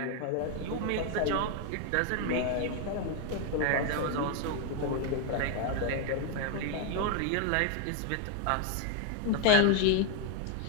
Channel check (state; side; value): different; both; correlation 0.00